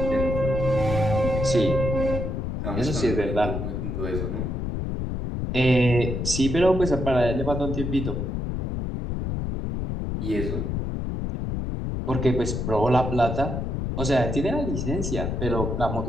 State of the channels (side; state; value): left; noise; rumble, 2 dB below the sound